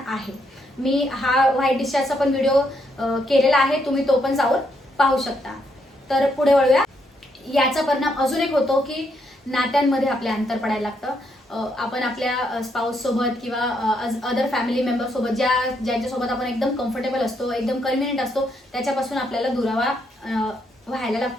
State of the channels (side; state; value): both; normal; correlation 0.76